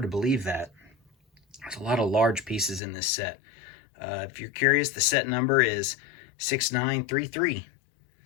to believe that. There's a lot of large pieces in this set. If you're curious, the set number is 6933.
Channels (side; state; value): right; drops out; at 2.8 s